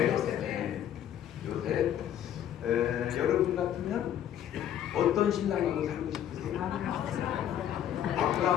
요셉. 여러분 같으면 어떤 신랑하고 살고 싶으세요?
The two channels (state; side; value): quieter; right; 10.5 dB